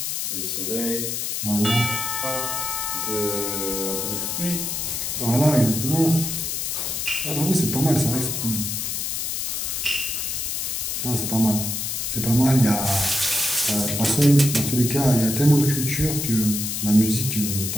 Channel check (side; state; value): left; noise; hiss, 2 dB below the sound